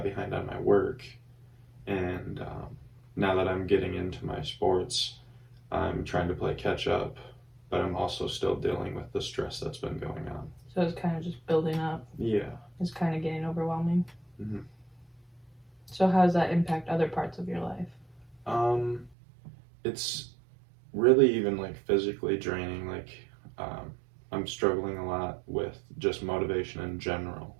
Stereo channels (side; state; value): left; drops out; at 19.2 s